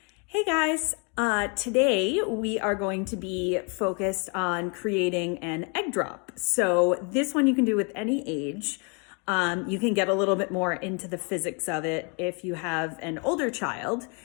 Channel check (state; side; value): quieter; right; 34.8 dB